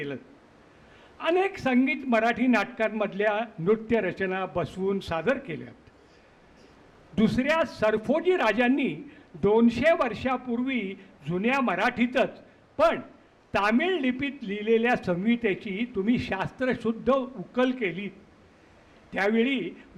अनेक संगीत मराठी नाटकांमधल्या नृत्यरचना बसवून सादर केल्यात. दुसऱ्या सरफोजी राजांनी 200 वर्षापूर्वी जुन्या मराठीतच पण तामिळ लिपीत लिहिलेल्या संहितेची तुम्ही शास्त्रशुद्ध उकल केली. त्यावेळी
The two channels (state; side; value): identical; both; correlation 1.00